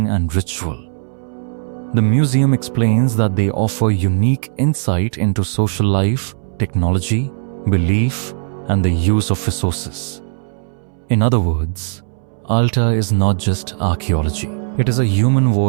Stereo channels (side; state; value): left; silent; 66 dB below the other